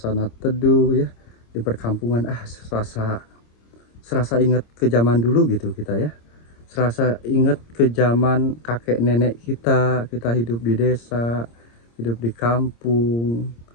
teduh ya di perkampungan. Serasa ingat ke zaman dulu gitu kita ya. Serasa ingat ke zaman kakek nenek kita hidup di desa, hidup di kampung.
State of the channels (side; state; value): right; late; 26 ms